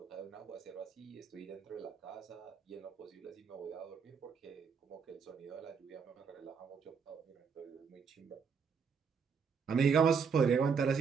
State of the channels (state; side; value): quieter; left; 6.1 dB